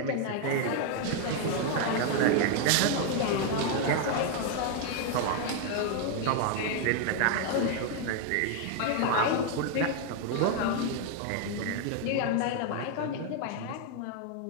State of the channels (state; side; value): different; both; correlation 0.00